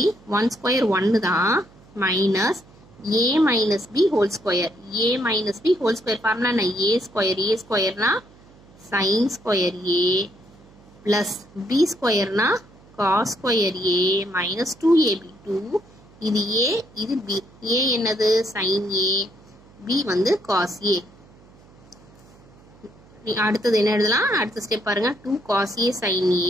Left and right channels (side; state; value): right; noise; hum, 26 dB below the sound